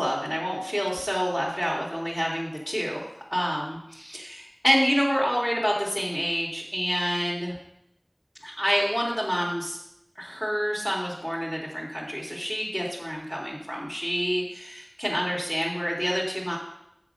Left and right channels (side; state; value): both; identical; correlation 1.00